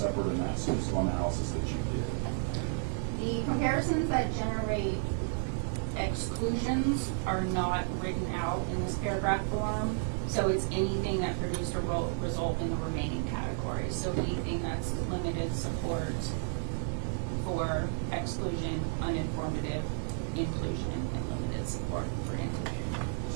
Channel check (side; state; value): left; silent; 56 dB below the other